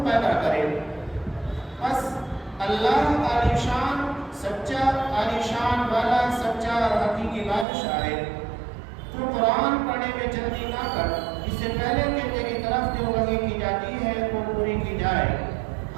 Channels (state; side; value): drops out; left; at 7.7 s